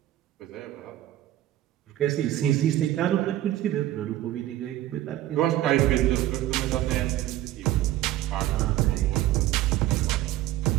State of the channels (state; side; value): quieter; left; 14.0 dB